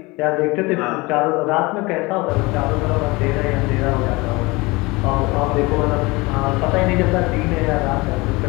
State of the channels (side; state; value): right; quieter; 23.7 dB